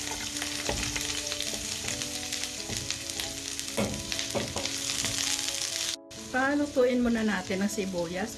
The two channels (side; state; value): both; identical; correlation 1.00